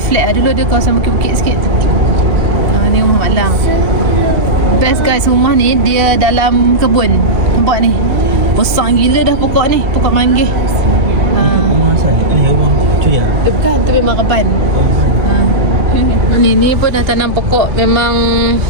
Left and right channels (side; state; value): left; late; 2.7 ms